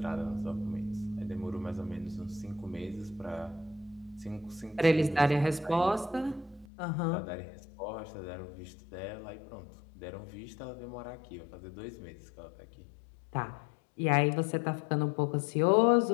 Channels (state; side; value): drops out; right; at 6.7 s